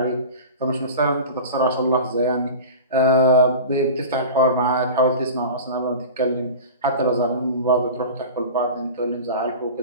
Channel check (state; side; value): inverted; both; correlation -0.33